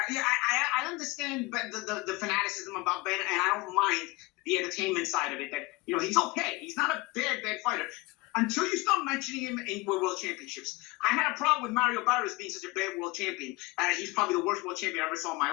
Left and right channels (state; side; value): quieter; right; 22.7 dB